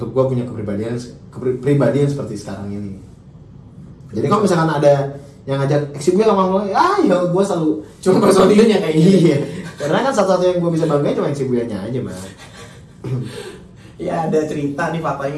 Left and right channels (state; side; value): identical; both; correlation 1.00